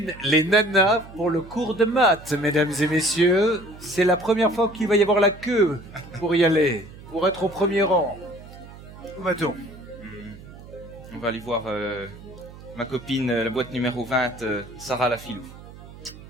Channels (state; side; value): noise; right; hum, 17 dB below the sound